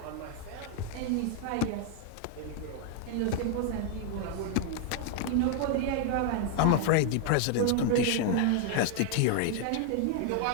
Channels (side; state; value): both; different; correlation 0.00